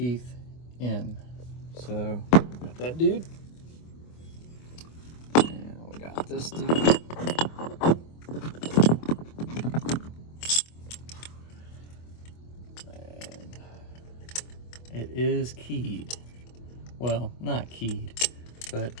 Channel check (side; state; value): right; late; 24 ms